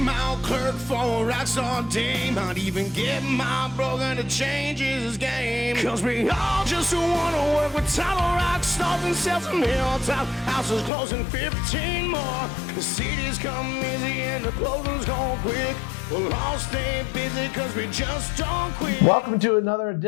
old clerk for a rockstar dame. Might even get my broker to change his game. Cause we all just wanna work with title rock stars and sell some hilltop houses closing 15 more. The cities come easy and the closings go quick. We'll all stay busy cause we just don't quit. Welcome to another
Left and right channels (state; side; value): drops out; right; at 10.9 s